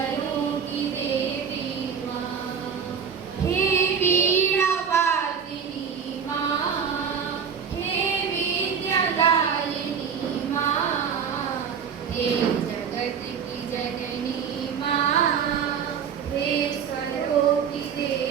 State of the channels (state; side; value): quieter; left; 7.0 dB